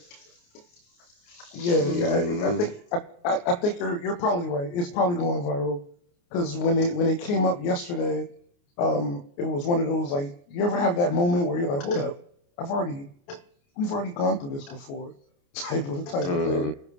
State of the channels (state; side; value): late; right; 29 ms